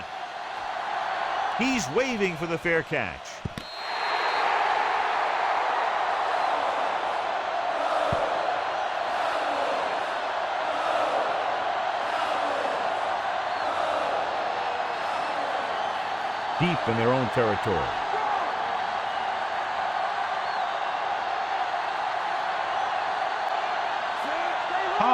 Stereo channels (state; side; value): identical; both; correlation 1.00